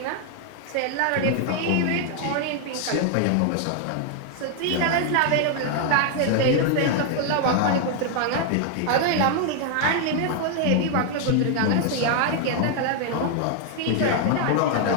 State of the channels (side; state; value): both; different; correlation 0.00